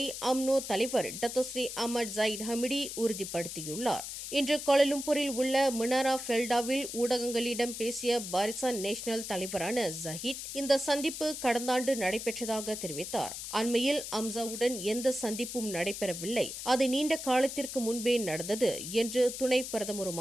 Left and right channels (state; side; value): noise; left; hiss, 7 dB below the sound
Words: அம்னோ தலைவர் டத்தோஸ்ரீ அஹமட் ஜயிட் ஹமிடி உறுதிப்படுத்தியுள்ளார். இன்று கோலாலம்பூரில் உள்ள மினாரா ஃபெல்டாவில் ஊடகங்களிடம் பேசிய பாரிசான் நேஷனல் தலைவரான ஜஹிட் இந்த சந்திப்பு கடந்த ஆண்டு நடைபெற்றதாக தெரிவித்தார். அண்மையில் அம்சாவுடன் எந்த சந்திப்பும் நடைபெறவில்லை, அது நீண்ட காலத்திற்கு முன்பே நடந்தது என்று துணை